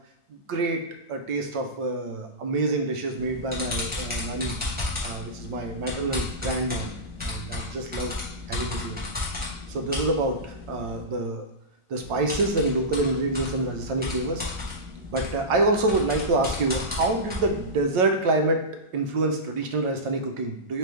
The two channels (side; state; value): left; late; 1.4 ms